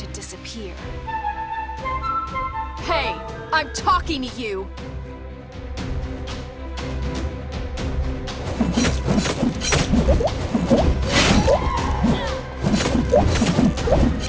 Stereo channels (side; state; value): both; identical; correlation 1.00